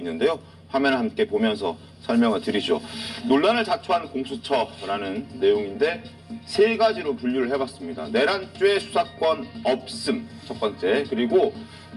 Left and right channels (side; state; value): both; identical; correlation 1.00